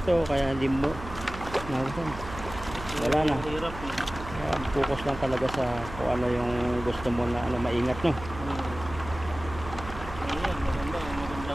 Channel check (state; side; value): noise; right; hum, 12 dB below the sound